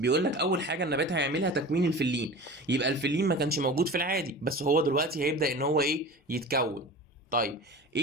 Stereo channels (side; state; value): both; normal; correlation 0.35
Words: لك اول حاجه النبات هيعملها تكوين الفلين. يبقى الفلين ما كانش موجود في العادي، بس هو دلوقتي هيبدا ان هو ايه؟ يتكون. طيب